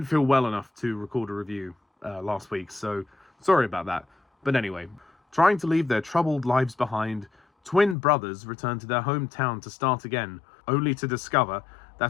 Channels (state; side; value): drops out; right; at 8.0 s